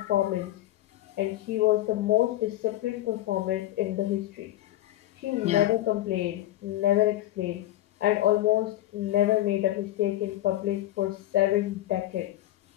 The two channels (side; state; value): right; quieter; 14.7 dB